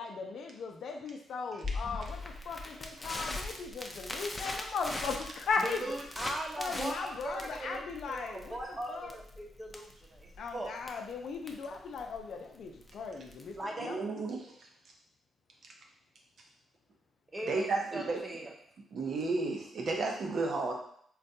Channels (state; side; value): normal; both; correlation 0.77